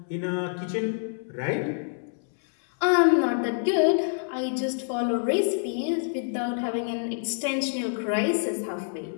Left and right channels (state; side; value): silent; right; 60 dB below the other